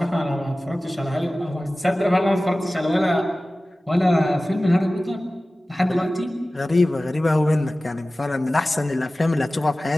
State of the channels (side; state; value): both; normal; correlation 0.97